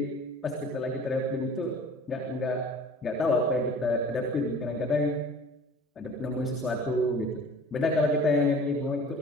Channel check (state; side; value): normal; both; correlation 0.45